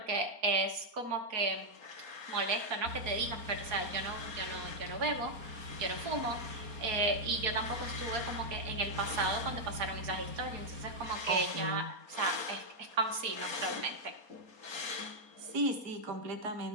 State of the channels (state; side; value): late; left; 4.3 ms